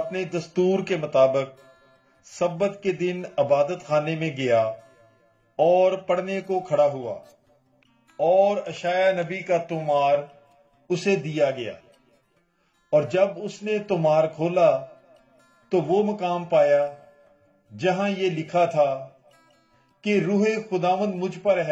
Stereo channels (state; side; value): identical; both; correlation 1.00